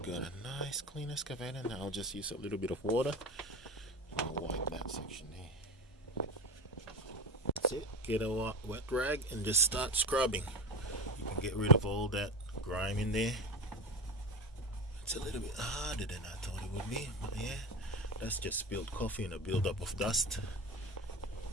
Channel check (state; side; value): normal; both; correlation 0.24